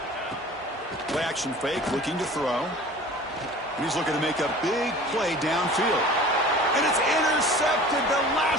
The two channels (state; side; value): normal; both; correlation 0.43